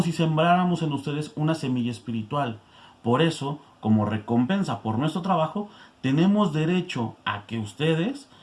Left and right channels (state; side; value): identical; both; correlation 1.00